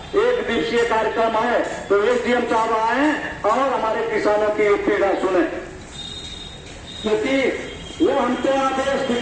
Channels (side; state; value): both; identical; correlation 1.00